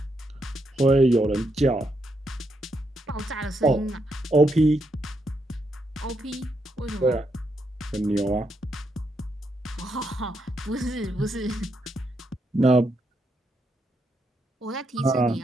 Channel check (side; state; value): both; normal; correlation 0.80